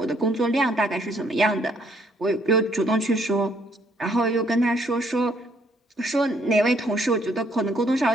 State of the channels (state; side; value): normal; both; correlation 0.67